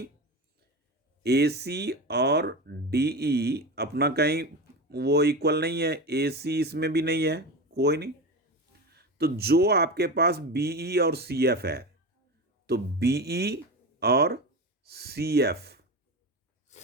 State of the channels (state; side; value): normal; both; correlation 0.24